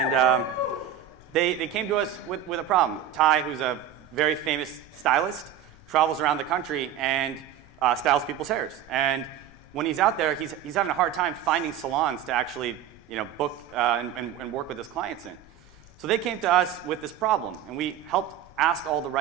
they came to us with a problem. Ty, who's a very famous stylist, travels around the country and styles people's hairs. And when he's out there, he's having a hard time finding salons to actually book and work with his clients in. So they came to us with this problem, and we helped ask all the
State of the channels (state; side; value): quieter; left; 9.7 dB